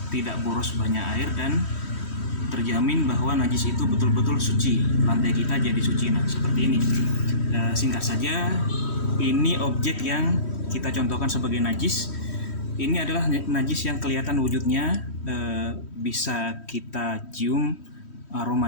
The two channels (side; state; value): right; late; 3.1 ms